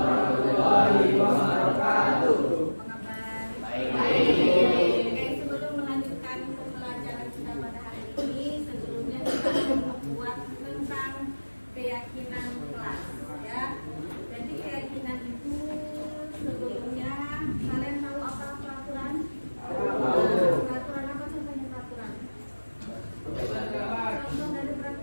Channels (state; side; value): inverted; both; correlation -1.00